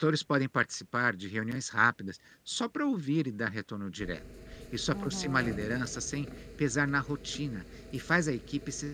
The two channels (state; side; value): identical; both; correlation 1.00